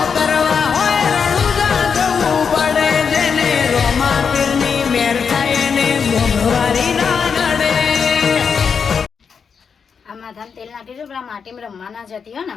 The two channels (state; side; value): quieter; right; 6.2 dB